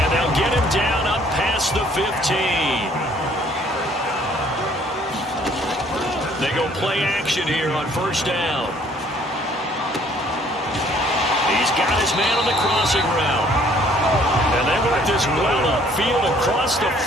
they'll get him down up past the 15. They go play action here on 1st down. He's He's got his man on the crossing route. And they work this well upfield across the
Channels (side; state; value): both; normal; correlation 0.60